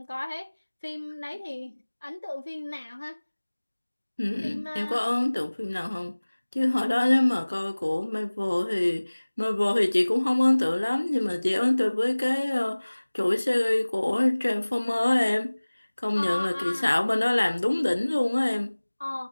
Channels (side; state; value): both; inverted; correlation -1.00